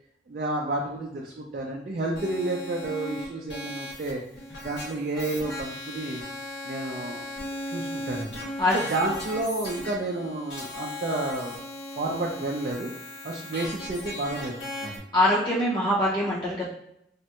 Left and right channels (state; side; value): normal; both; correlation 0.38